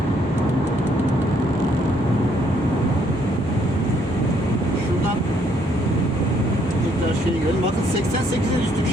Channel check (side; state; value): both; normal; correlation 0.68